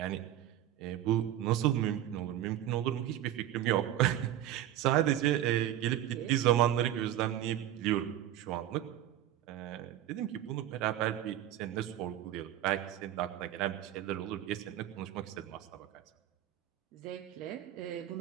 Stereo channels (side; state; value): left; quieter; 12.3 dB